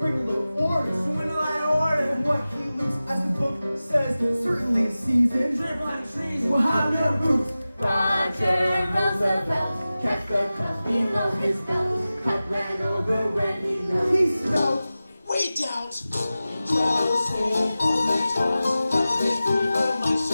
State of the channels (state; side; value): inverted; both; correlation -0.95